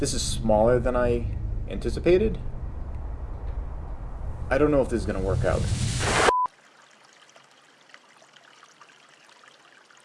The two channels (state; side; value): identical; both; correlation 1.00